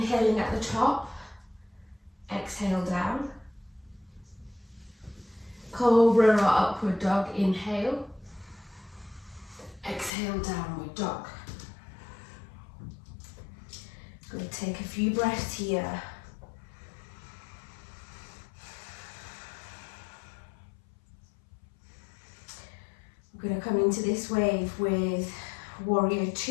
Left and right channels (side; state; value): right; drops out; at 10.1 s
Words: at the top. Exhale down. Cobra or upward dog. Inhale. Exhale, downward dog. Going to take a few breaths here. We're going to come into this wave with warrior